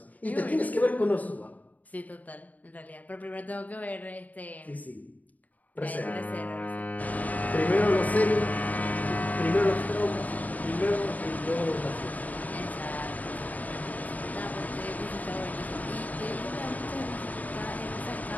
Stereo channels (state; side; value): late; right; 0.076 ms